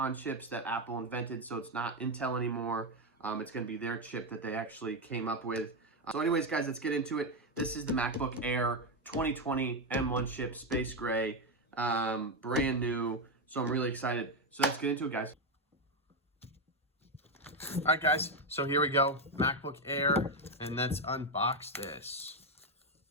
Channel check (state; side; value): normal; both; correlation 0.07